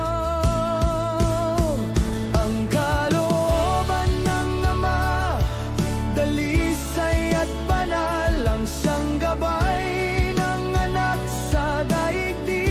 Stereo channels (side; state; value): both; identical; correlation 1.00